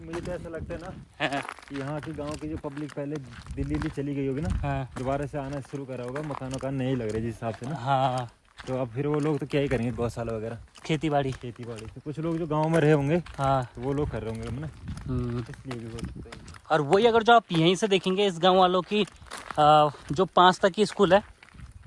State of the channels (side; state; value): both; identical; correlation 1.00